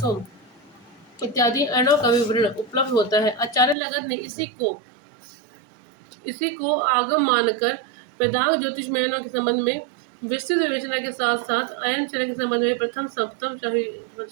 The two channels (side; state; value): left; drops out; at 3.8 s